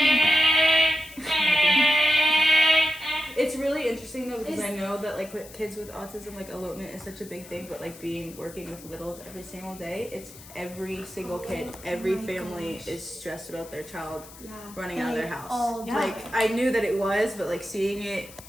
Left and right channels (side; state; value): left; noise; hiss, 18 dB below the sound